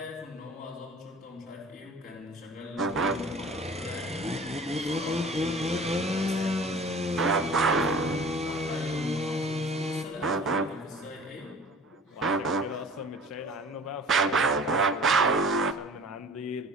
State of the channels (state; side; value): normal; both; correlation 0.45